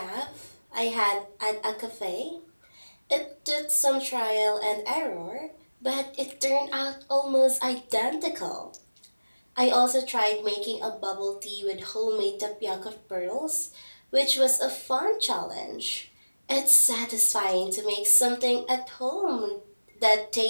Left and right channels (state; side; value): inverted; both; correlation -1.00